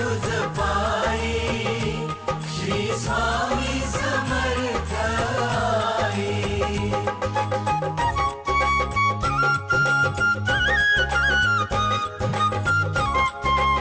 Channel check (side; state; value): both; identical; correlation 1.00